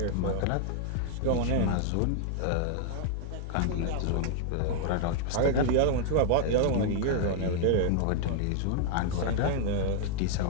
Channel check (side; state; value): both; different; correlation 0.00